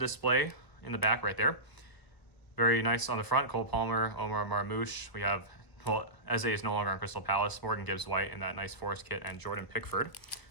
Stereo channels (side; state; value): right; late; 1.0 ms